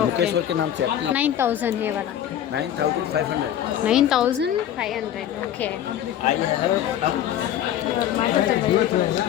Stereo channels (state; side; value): quieter; right; 10.9 dB